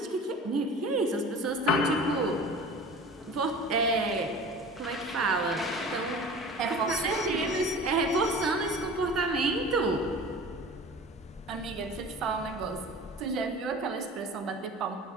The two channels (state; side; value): normal; both; correlation 0.39